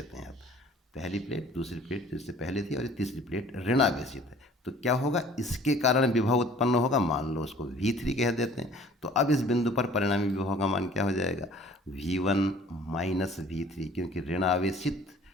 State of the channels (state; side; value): normal; both; correlation 0.51